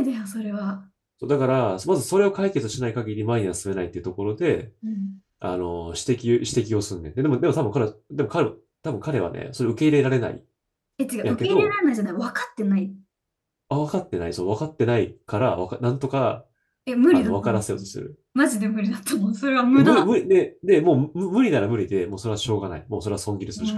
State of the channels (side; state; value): both; identical; correlation 1.00